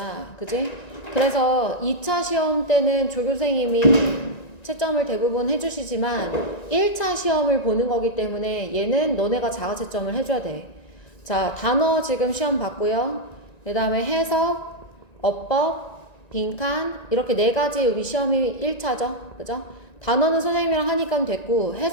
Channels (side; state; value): right; late; 1.9 ms